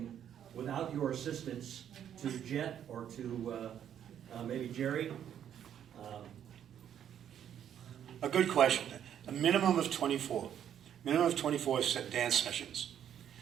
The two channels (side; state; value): left; quieter; 9.6 dB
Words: without your assistance to Jet or to maybe Jerry? A good question. A minimum of 24. Minimum of 24 dance sessions.